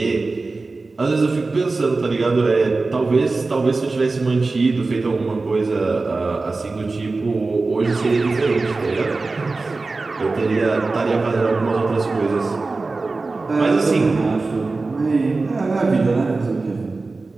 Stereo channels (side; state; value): left; quieter; 3.7 dB